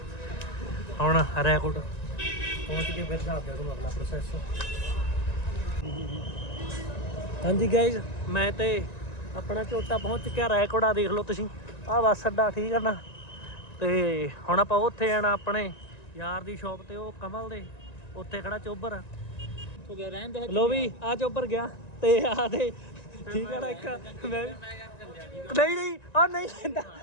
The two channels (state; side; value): late; right; 1.9 ms